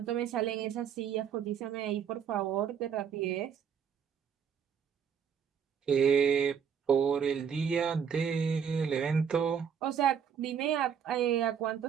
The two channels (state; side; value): quieter; left; 7.5 dB